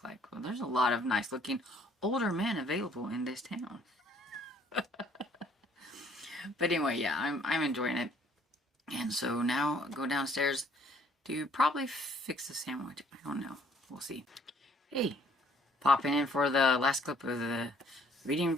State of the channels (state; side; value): normal; both; correlation 0.61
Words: like, well, there's a lot of nice-looking older men available in this town. But anyway, yeah, I'm enjoying it. And so now go downstairs to probably fix the sandwich. I don't know. We'll see. Hey, popping in for the last clip of the reading